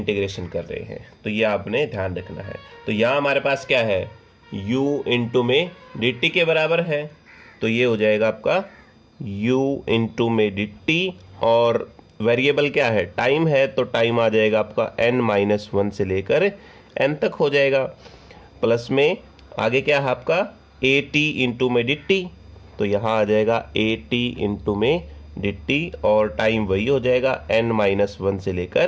कर रहे हैं, तो ये आपने ध्यान रखना है। तो यहाँ हमारे पास क्या है, u इंटू में डी टी के बराबर है, तो ये हो जाएगा आपका u इंटू में डी टी और वेरिएबल क्या है, टाइम है, तो टाइम आ जाएगा आपका n-1 से लेकर n तक हो जाएगा। प्लस में आगे क्या है आपका ए टी इंटू में डी टी, तो यहाँ आ जाएगा ए टी इंटू में डी टी और टाइम वही हो जाएगा n-1 से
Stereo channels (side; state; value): both; identical; correlation 1.00